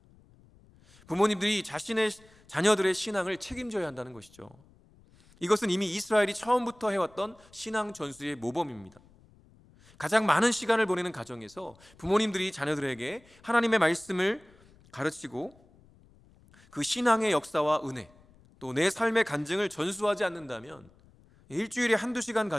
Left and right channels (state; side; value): noise; left; rumble, 27 dB below the sound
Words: 부모님들이 자신의 자녀들의 신앙을 책임져야 한다는 것이죠. 이것은 이미 이스라엘이 처음부터 해왔던 신앙 전수의 모범입니다. 가장 많은 시간을 보내는 가정에서 부모님들이 자녀들에게 하나님의 말씀을 가르치고 그 신앙의 역사와 은혜, 또 내 삶의 간증을 전수하지 않는다면 일주일에 한두 시간